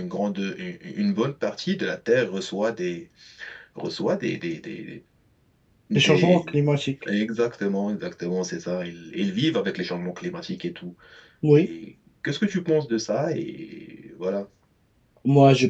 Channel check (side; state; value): both; identical; correlation 1.00